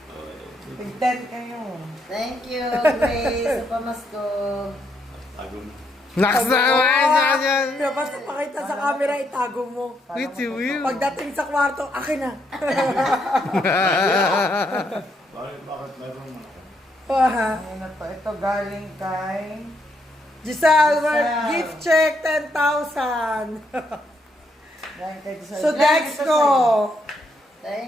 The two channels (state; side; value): normal; both; correlation 0.75